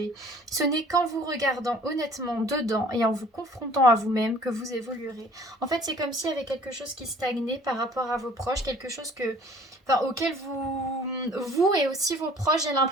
Ce n'est qu'en vous regardant honnêtement dedans et en vous confrontant à vous-même que vous évoluerez. En fait, c'est comme s'il y avait quelque chose qui stagnait par rapport à vos proches, quelque chose que... Enfin, auquel vous et aussi vos proches, j'ai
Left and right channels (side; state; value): both; normal; correlation 0.52